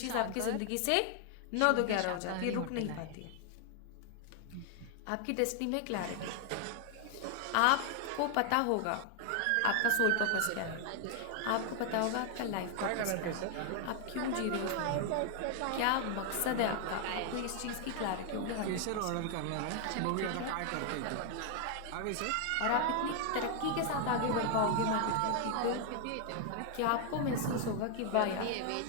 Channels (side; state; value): both; different; correlation 0.00